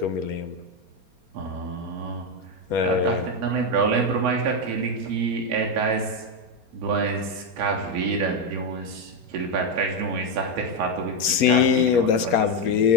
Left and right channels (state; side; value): late; left; 4.3 ms